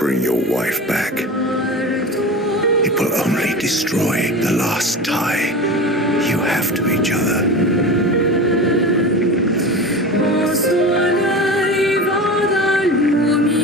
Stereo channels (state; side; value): normal; both; correlation 0.30